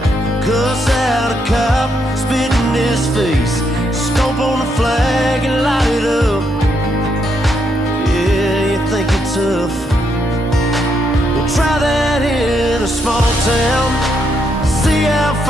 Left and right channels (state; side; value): normal; both; correlation 0.77